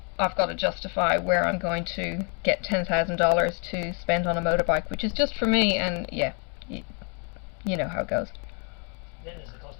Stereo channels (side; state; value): right; quieter; 37.9 dB